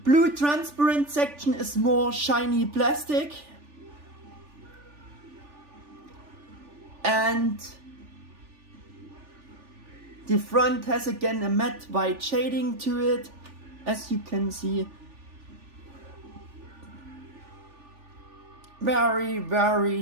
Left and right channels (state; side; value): late; left; 3.4 ms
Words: transparent section is more shiny plastic. And the front has again a matte white shading to it, as you can see. Very, very